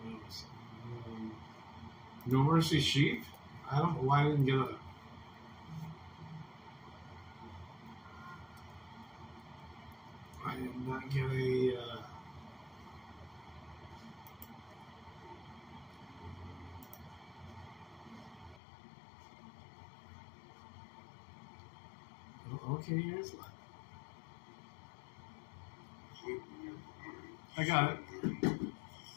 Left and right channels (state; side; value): drops out; right; at 18.6 s